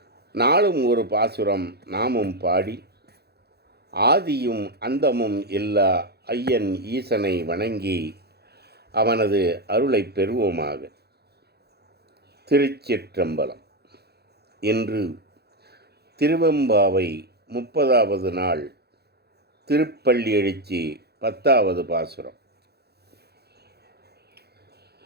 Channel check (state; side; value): late; left; 0.47 ms